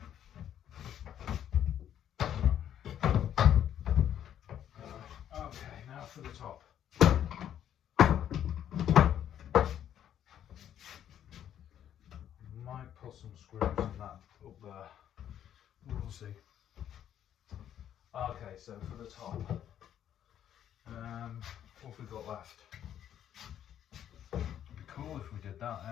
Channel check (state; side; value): quieter; right; 10.3 dB